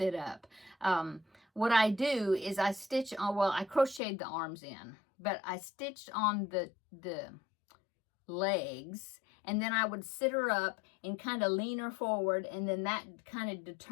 up. What I do is I stitch on, well, I crocheted the arms in, but I stitched on the legs, and then I would sit her up and kind of lean her forward, and then that kind of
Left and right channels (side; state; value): right; drops out; at 4.0 s